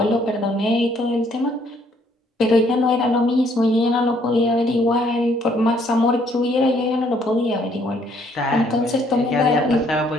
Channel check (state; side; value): normal; both; correlation 0.65